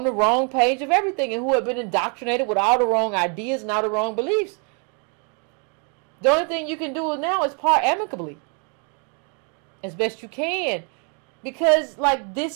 the wrong page of everything and who had been indoctrinated with all the wrong ideas and all the wrong beliefs. The only thing you can do now is part amicably. As best you can. Because, like,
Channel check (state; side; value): quieter; left; 37.4 dB